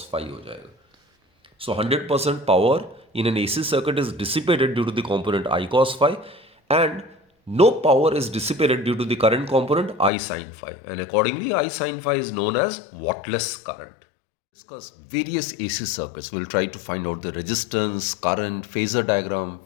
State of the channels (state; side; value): drops out; right; at 10.1 s